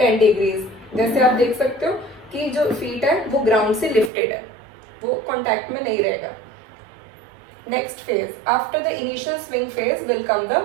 10 degrees. जैसे आप देख सकते हो कि जो फीट है वो ग्राउंड से लिफ्टेड है, वो कॉन्टैक्ट में नहीं रहेगा। Next phase after the initial swing phase will come the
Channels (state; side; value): drops out; left; at 4.1 s